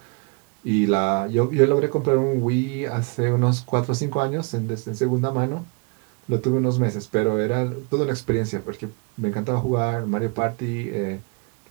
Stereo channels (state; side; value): quieter; left; 32.6 dB